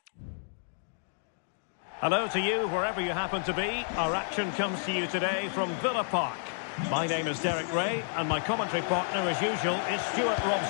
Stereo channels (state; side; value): silent; right; digital silence